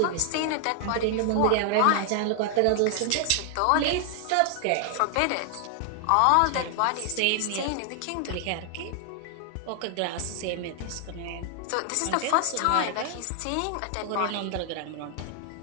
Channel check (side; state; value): both; different; correlation 0.00